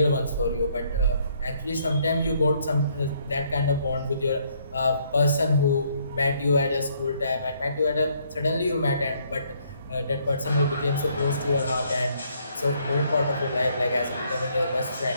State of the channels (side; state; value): both; inverted; correlation -0.68